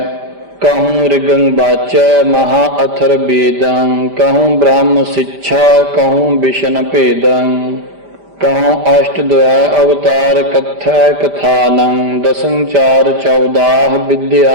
कहूँ ऋगं वाचै महा अथर वेदं, कहूँ ब्रह्म शिक्षा कहूँ विष्ण भेदं। कहूँ अष्टद्वय अवतार कथै कथानं, दसं चार चौदाह विद्या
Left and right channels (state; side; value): late; left; 5.0 ms